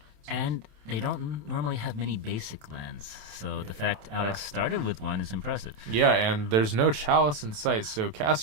And they don't normally have many basic lands, so the fact Alex started with one is impressive. Yeah, and there's no Chalice in sight, so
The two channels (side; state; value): left; late; 27 ms